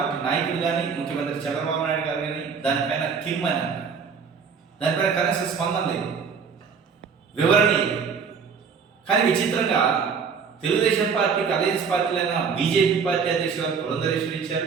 నాయకులు కానీ, ముఖ్యమంత్రి చంద్రబాబు నాయుడు గారు కానీ దానిపైన కిమ్మని అన్నారు. దానిపైన కనీసం స్పందన లేదు, వివరణ లేదు. కానీ విచిత్రంగా తెలుగుదేశం పార్టీకి అలయన్స్ పార్టీలైన బీజేపీ పార్టీ అధ్యక్షులు పురంధరేశ్వరి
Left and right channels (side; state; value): left; quieter; 6.0 dB